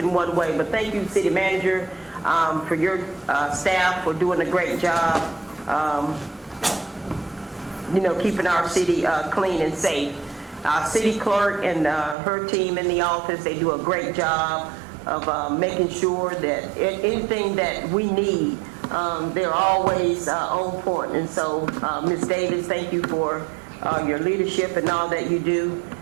one way, but thank you, city manager, for your staff for doing a great job, keeping our city clean and safe. Our city clerk and her team in the office, they do a great job of making sure that anything that we need, they're always on point. And so, Ms. Davis, thank you for your leadership and all that you do.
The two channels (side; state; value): left; drops out; at 12.2 s